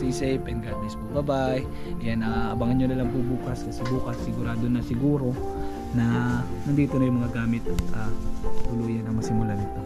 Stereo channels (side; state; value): both; identical; correlation 1.00